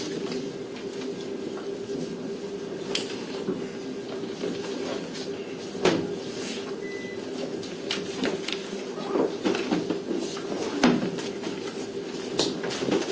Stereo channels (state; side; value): identical; both; correlation 1.00